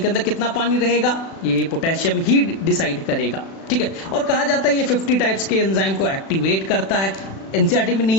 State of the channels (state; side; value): late; right; 36 ms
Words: के अंदर कितना पानी रहेगा ये पोटेशियम ही डिसाइड करेगा। ठीक है, और कहा जाता है ये 50 टाइप्स के एंजाइम को एक्टिवेट करता है। एनसीईआरटी में